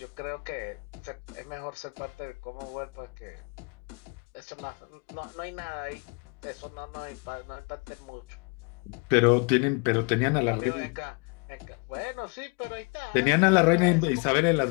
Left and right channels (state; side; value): quieter; right; 33.9 dB